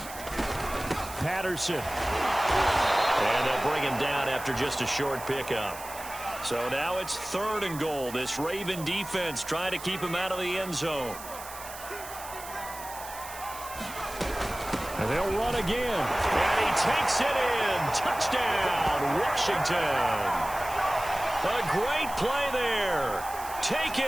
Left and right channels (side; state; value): right; noise; hiss, 13 dB below the sound